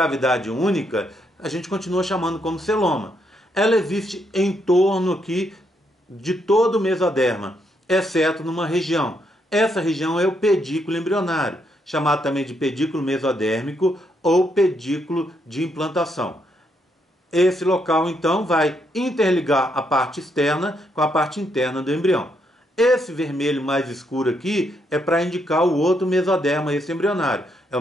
única a gente continua chamando como celoma. Ela existe em torno aqui de todo o mesoderma, exceto numa região. Essa região é o pedículo embrionário, chamado também de pedículo mesodérmico ou pedículo de implantação. Esse local, então, vai interligar a parte externa com a parte interna do embrião. Esse vermelho mais escuro aqui é para indicar o outro mesoderma extraembrionário. É o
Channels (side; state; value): both; normal; correlation 0.76